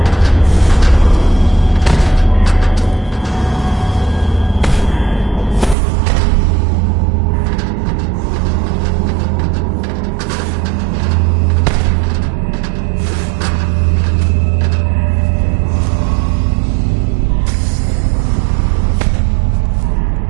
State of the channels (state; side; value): drops out; left; at 5.8 s